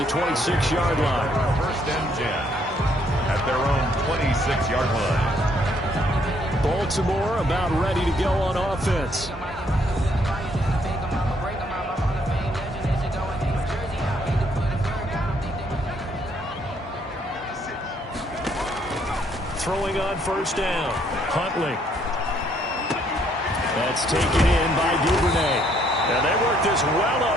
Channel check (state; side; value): normal; both; correlation 0.68